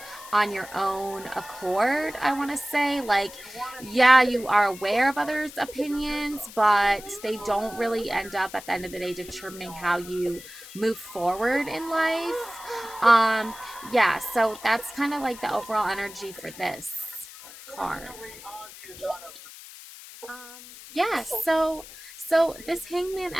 on your own accord. I want to say, like, yeah, you are aware of others' opinions, but they don't really end up at the end of the day determining how you move forward in life. Um, yeah, so that's kind of like the overall energy for this card. Um, yeah, so this hangman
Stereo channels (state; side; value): noise; left; hiss, 16 dB below the sound